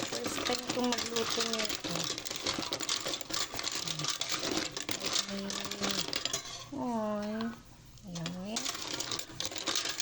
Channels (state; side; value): identical; both; correlation 1.00